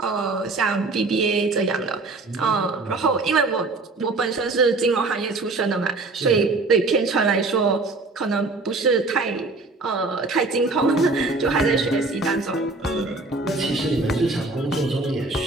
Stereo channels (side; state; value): left; quieter; 3.4 dB